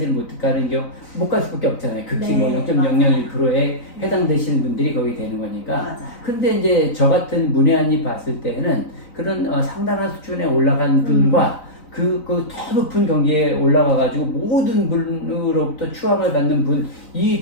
못 가는 경우 못 갈 수밖에 없잖아요. 극히 네, 뭐 0.001%에 해당되시는 분들이 거기 되는 거니까. 맞아요. 근데 이제 저 같은 문외한이 봤을 때는 그런 상당한 수준에 올라간 분과 그 더 높은 경지에 올라가가지고 모든 분으로부터 추앙을 받는 분, 이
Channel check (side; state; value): right; late; 3.9 ms